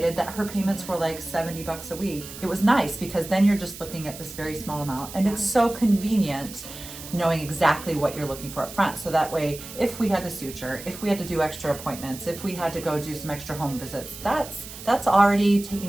that her payments were like $70 a week. It was nice because then you're just looking at this very small amount, and it's so convenient knowing exactly what you're looking for up front. So that way, if we had to suture, if we had to do extra appointments, if we had to go do some extra home visits, that's already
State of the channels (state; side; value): noise; right; hiss, 13 dB below the sound